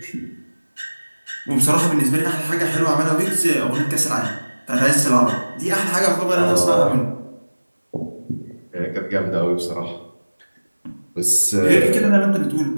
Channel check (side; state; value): both; inverted; correlation -1.00